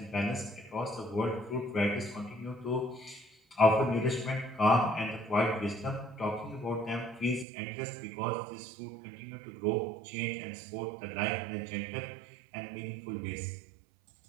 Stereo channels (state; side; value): drops out; left; at 7.5 s